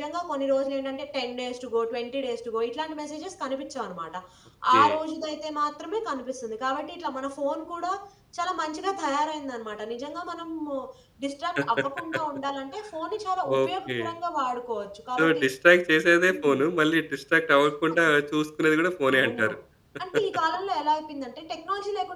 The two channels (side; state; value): both; identical; correlation 1.00